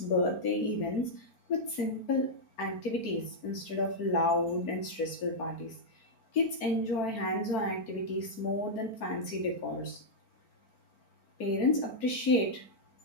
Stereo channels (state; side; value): late; right; 4.4 ms